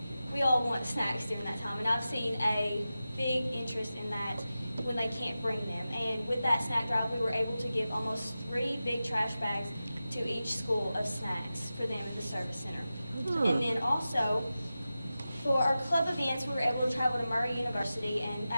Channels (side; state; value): both; inverted; correlation -0.93